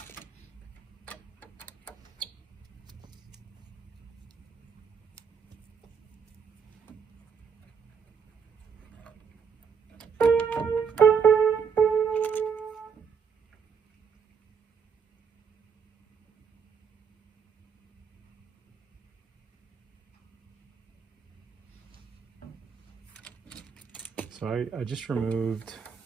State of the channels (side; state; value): left; quieter; 6.4 dB